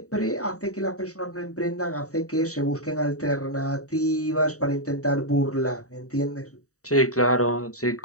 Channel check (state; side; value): late; right; 0.66 ms